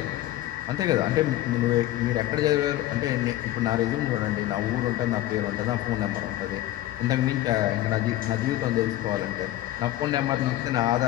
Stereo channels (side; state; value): right; quieter; 14.8 dB